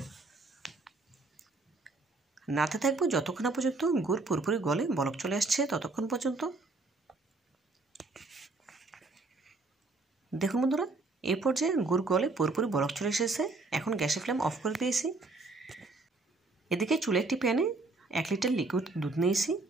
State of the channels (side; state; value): left; quieter; 3.5 dB